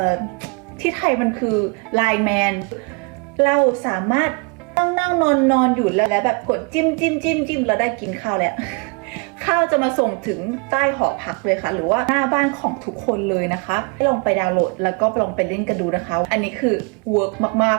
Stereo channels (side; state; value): left; quieter; 33.6 dB